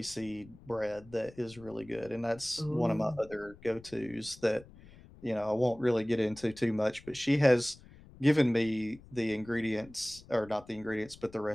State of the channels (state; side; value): noise; left; rumble, 21 dB below the sound